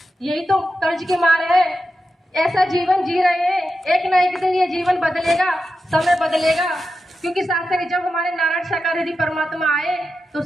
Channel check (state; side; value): normal; both; correlation 0.90